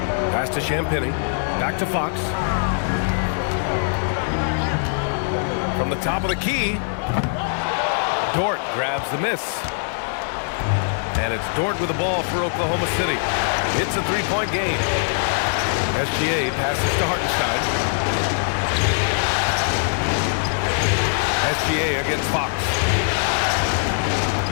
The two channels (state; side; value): silent; right; digital silence